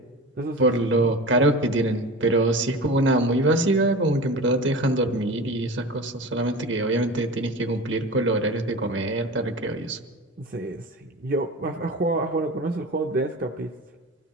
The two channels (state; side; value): normal; both; correlation 0.33